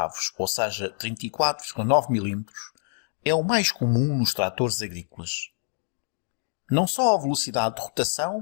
ou seja, 34,9 mm, é o mais comum nos tratores agrícolas. Não só a velocidade de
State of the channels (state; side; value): silent; right; digital silence